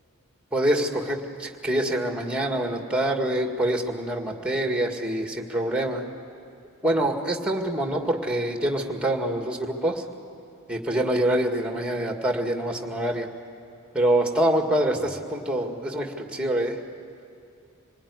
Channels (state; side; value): normal; both; correlation 0.61